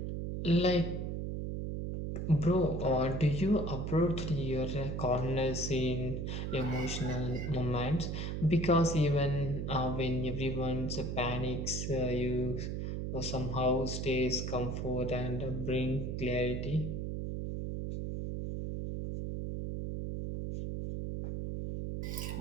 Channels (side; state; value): right; noise; hum, 3 dB below the sound